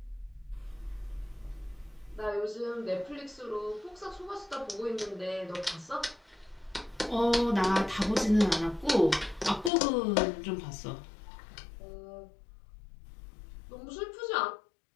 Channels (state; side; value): drops out; right; at 9.7 s